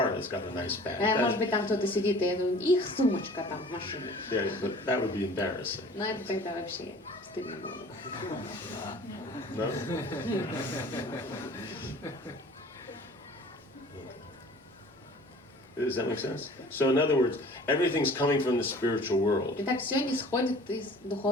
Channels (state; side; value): normal; both; correlation 0.47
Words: that's got a nice bag. Может быть, там кто-то сидит, и их сумочка там в машине. Yeah, but that would be embarrassing. Но это тогда вообще стыдно было. No? Does that make sense? So in other words, everything's coming from the spiritual world. Итак, все исходит из